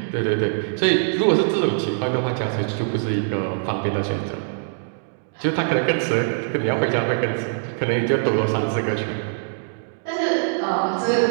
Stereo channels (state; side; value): silent; left; digital silence